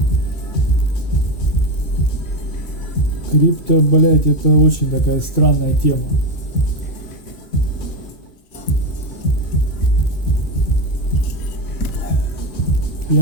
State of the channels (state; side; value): late; right; 2.4 ms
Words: Крипто, блять, это очень такая странная тема.